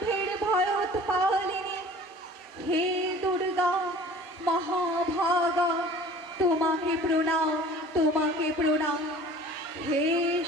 ভয়োৎপালিনী। হে দুর্গা মহাভাগা তোমাকে প্রণাম, তোমাকে প্রণাম। হে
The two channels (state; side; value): normal; both; correlation 0.46